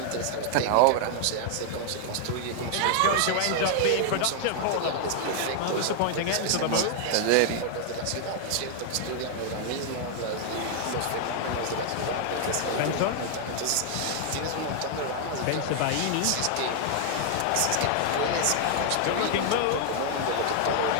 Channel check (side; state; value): both; different; correlation -0.01